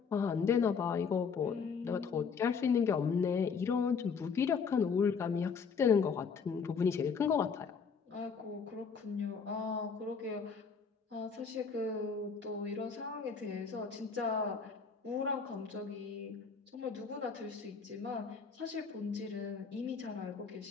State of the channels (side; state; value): right; quieter; 5.8 dB